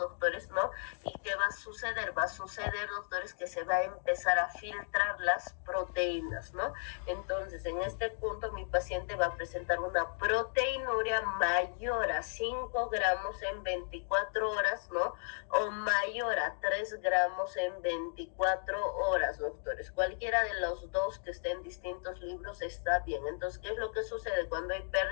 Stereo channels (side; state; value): right; silent; digital silence